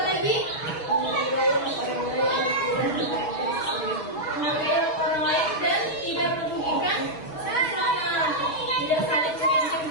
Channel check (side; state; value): right; late; 6.6 ms